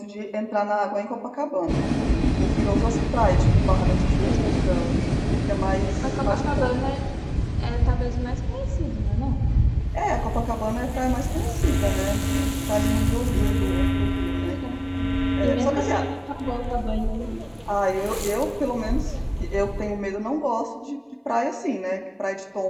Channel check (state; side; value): identical; both; correlation 1.00